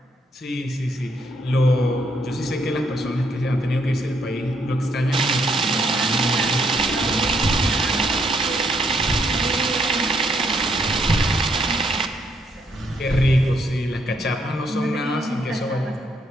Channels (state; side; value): normal; both; correlation 0.73